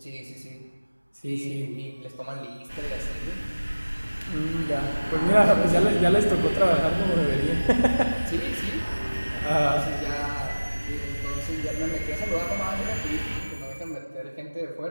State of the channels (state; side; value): inverted; both; correlation -1.00